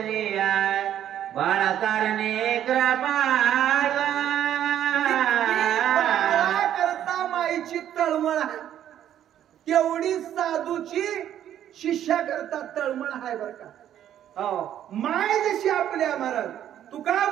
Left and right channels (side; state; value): left; quieter; 10.8 dB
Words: बाळा कारणे कृपाळा. करता माईची तळमळ तेवढी साधूची शिष्या करता तळमळ आहे बर का. माय जशी आपल्या महाराज तुका